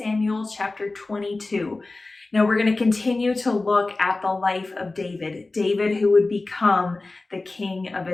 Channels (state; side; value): quieter; right; 3.3 dB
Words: chapter 22. Now we're going to continue to look at the life of David who would become the king of